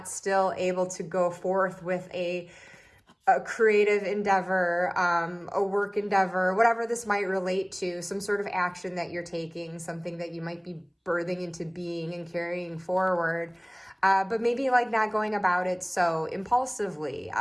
still able to go forth with a creative endeavor, a work endeavor, whatever this might relate to, some sort of action that you're taking, something that you might be birthing into being and carrying forward. But maybe like not going about it so impulsively.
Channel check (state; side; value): identical; both; correlation 1.00